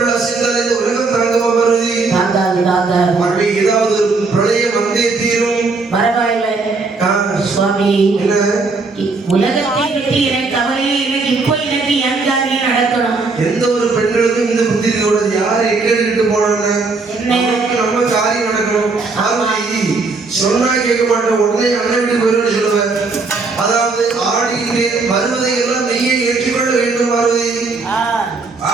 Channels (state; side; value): quieter; left; 3.9 dB